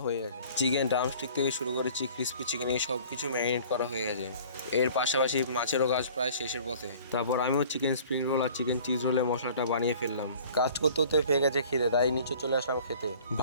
হয়ে গেছে। চিকেন ড্রামস্টিক থেকে শুরু করে ক্রিস্পি চিকেন এই সব কিছু ম্যারিনেট করা হয়ে গেছে। এর পাশাপাশি মাছেরও কাজ প্রায় শেষের পথে। তারপর আমিও চিকেন স্প্রিং রোল আর চিকেন চিজ রোলের মশলাটা বানিয়ে ফেললাম। কাজ করতে করতে পেয়ে গেছে খিদে, তাই নিচে চলে আসলাম খেতে।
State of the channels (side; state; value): both; inverted; correlation -0.49